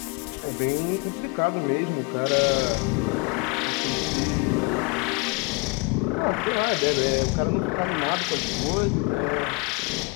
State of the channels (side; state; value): right; quieter; 29.3 dB